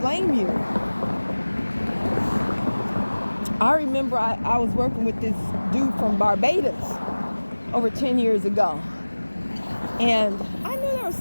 I remember I was working with this dude from Barbados over 10 years ago. And I knew there was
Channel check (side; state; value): both; inverted; correlation -1.00